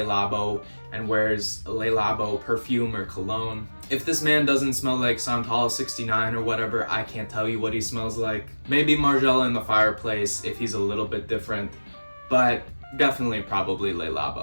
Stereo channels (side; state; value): both; inverted; correlation -1.00